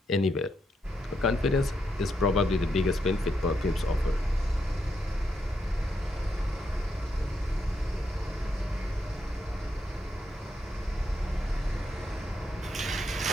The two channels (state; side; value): normal; both; correlation 0.80